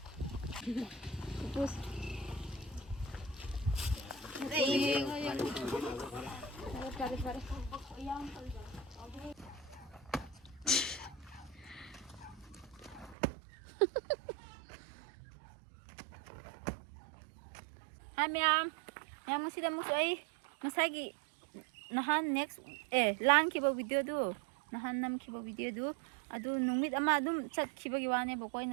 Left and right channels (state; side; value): drops out; left; at 13.2 s